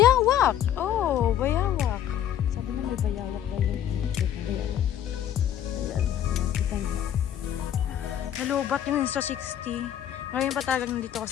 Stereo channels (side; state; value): right; quieter; 10.5 dB